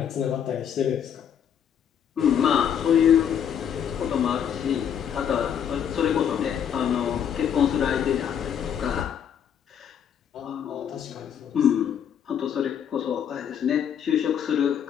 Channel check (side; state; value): right; quieter; 8.6 dB